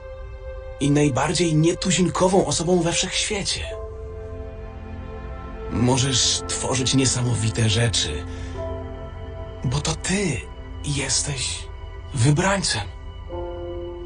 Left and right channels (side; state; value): both; identical; correlation 1.00